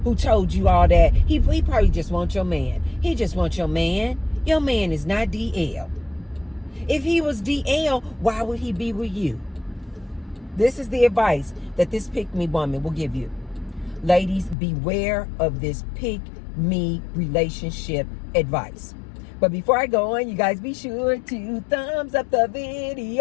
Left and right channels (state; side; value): drops out; right; at 14.6 s